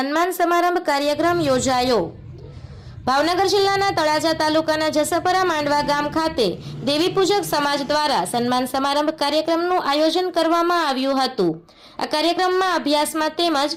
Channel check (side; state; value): both; identical; correlation 1.00